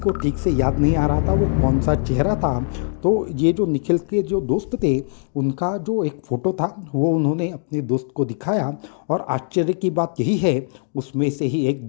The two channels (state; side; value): silent; right; digital silence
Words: ठीक से याद नहीं आ रहा था वो कौन सा चेहरा था। तो ये जो निखिल के जो दोस्त थे उनका जो एक फ़ोटो था वो उन्होंने अपने दोस्त को दिखाया और आश्चर्य की बात यही है उसमें से ही एक